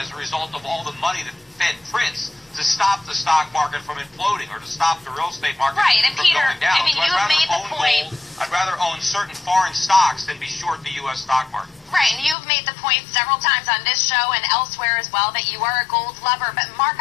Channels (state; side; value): drops out; right; at 12.4 s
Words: a result of all the money that the Fed prints to stop the stock market from imploding or to stop the real estate market and from Peter, going down. I mean, so you have made the point. I'd rather own certain foreign stocks than be short the U.S. stock market. Right, and you've made the point several times on this show and elsewhere as well that you are a gold lover. But Mark,